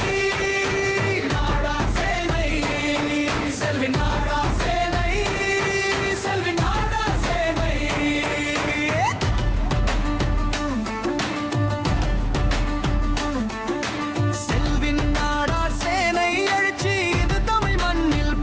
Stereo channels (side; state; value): both; identical; correlation 1.00